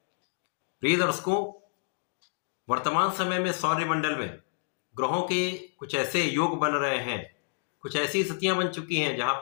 प्रिय दर्शकों, वर्तमान समय में सौरमंडल में ग्रहों के कुछ ऐसे योग बन रहे हैं, कुछ ऐसी स्थितियां बन चुकी हैं जहां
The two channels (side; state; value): right; silent; digital silence